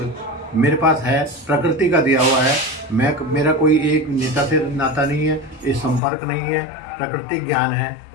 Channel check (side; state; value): right; drops out; at 6.0 s